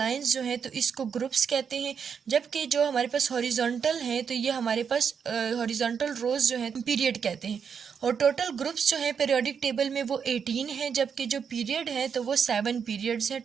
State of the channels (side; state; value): left; quieter; 6.9 dB